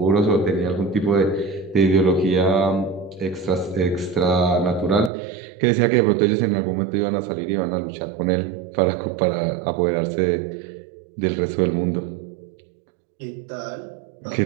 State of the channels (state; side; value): drops out; left; at 5.1 s